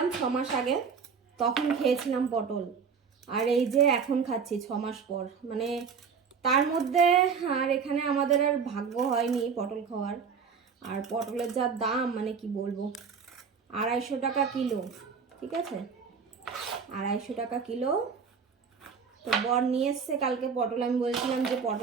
6 মাস আগে, তখন খেয়েছিলাম পটল। আর এই যে এখন খাচ্ছি 6 মাস পর। মানে তার মধ্যে আর এখানে আমাদের আর ভাগ্য হয়নি পটল খাওয়ার। আর পটলের যা দাম, মানে কি বলবো, 250 টাকা কিলো। ঠিক আছে, 250 টাকা কিলো। তো বর নিয়ে এসছে কালকে পটল। আমি বলছিলাম যে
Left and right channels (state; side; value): quieter; left; 6.0 dB